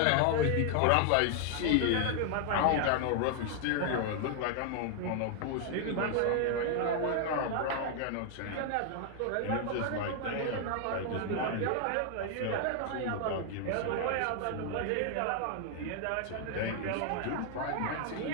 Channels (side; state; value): both; different; correlation 0.00